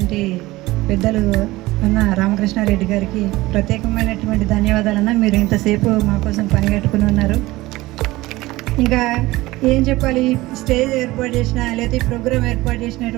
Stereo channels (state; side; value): quieter; left; 19.1 dB